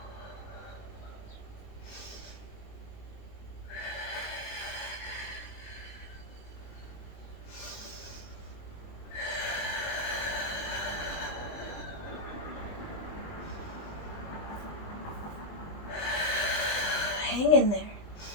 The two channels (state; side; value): late; right; 20 ms